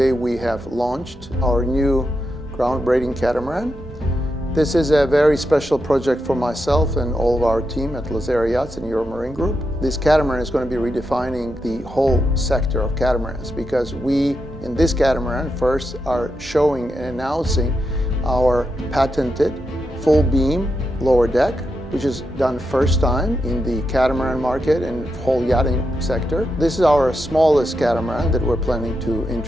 we have launched our new groundbreaking catamaran. This is a very special project for myself and all of our team at Lazzara Yachts and Euromarine Group. This catamaran is going to be redefining the whole sector of catamarans, because we, in this catamaran, first are showing and announcing our patented full beam lower deck, which is done first time in the catamaran market and whole yachting sector. This is our smallest catamaran that we're planning to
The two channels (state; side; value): normal; both; correlation 0.86